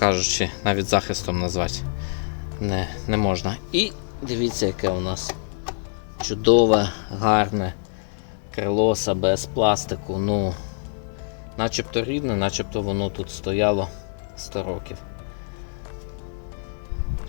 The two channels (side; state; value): right; silent; 61 dB below the other